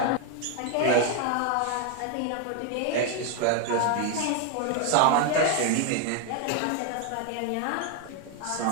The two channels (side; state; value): both; different; correlation 0.01